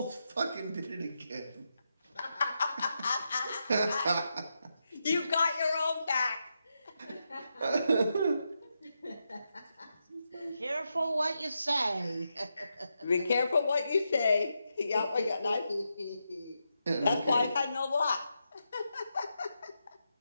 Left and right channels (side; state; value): both; inverted; correlation -0.85